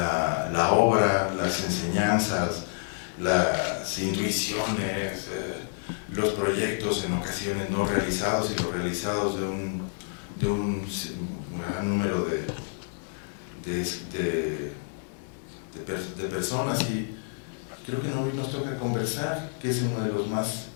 obra, las enseñanzas, las intuiciones, los proyectos en ocasiones no realizados y los realizados de un gran número de personas, y creo que hoy nos toca conversar, que es uno de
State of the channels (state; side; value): silent; right; digital silence